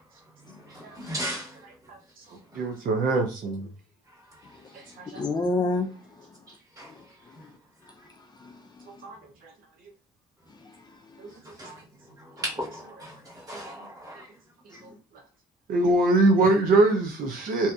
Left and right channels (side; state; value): both; normal; correlation 0.53